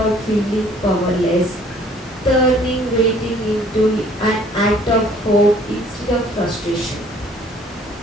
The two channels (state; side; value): normal; both; correlation 0.57